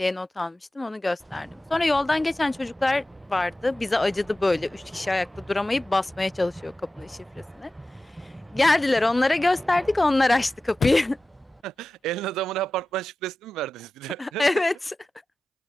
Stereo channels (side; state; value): both; normal; correlation 0.95